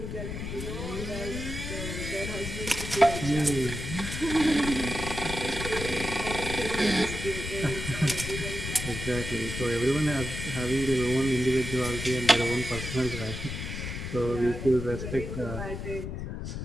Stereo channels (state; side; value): noise; left; rumble, 6 dB below the sound